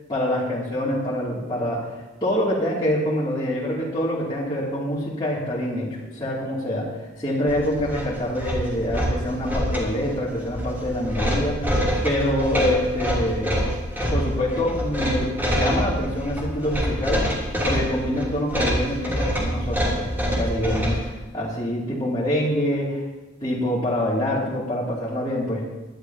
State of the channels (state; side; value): normal; both; correlation 0.58